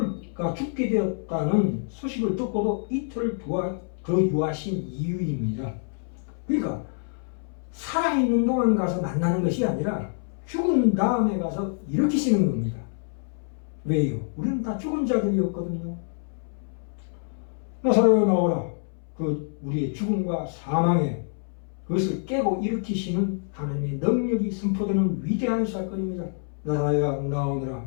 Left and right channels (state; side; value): silent; right; 61 dB below the other